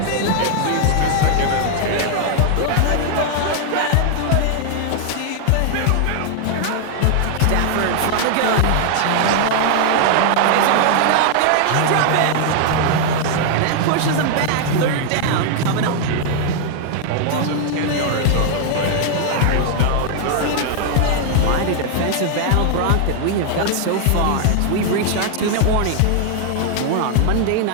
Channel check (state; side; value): different; both; correlation 0.00